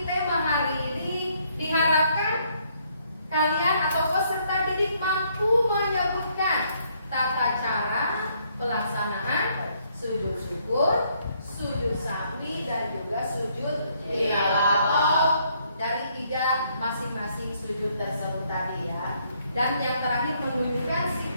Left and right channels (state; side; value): inverted; both; correlation -0.69